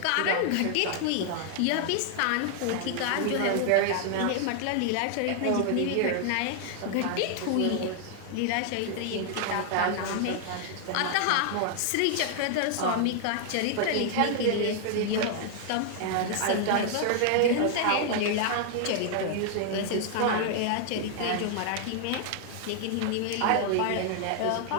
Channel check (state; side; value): different; both; correlation 0.00